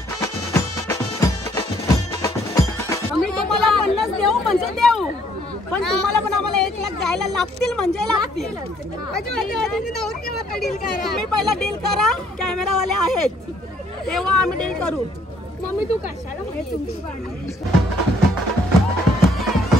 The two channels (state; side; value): normal; both; correlation 0.65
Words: पण तुम्हाला पण आम्हाला 1 लाख द्यायला लागतील म्हणजे लागतील. तुम्ही पहिला डील करा कॅमेरावाले आहेत तेव्हा आम्ही डील करू. मम्मी तू कशाला म्हणजे तुमची